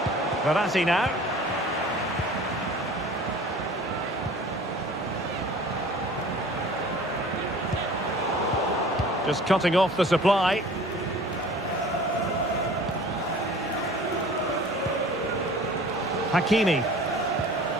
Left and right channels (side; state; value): both; normal; correlation 0.45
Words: Verratti now. Just cutting off the supply. Hakimi.